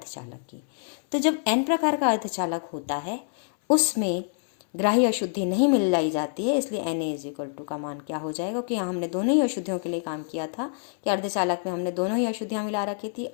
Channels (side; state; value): right; silent; 61 dB below the other